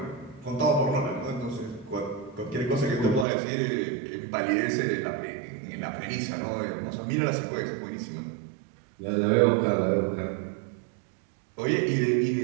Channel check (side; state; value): left; drops out; at 3.2 s